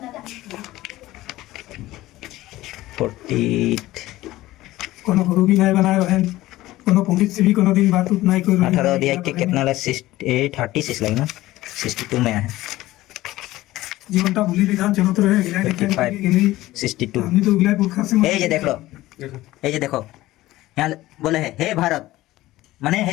48 कोनो गुरु भी नहीं बनाए बहन कोनो पंडित से भी कोनो दिन बात उत नहीं कोई 18 अध्याय के कितना लगा 36 लगे ना 62 में है जीवन का भूली विधान चलो तो रहे गिला के 62 हमने तो गिला पुरखा से ये देख लो ये देखो यहाँ बोले है हे भारत माने हे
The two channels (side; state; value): right; quieter; 16.8 dB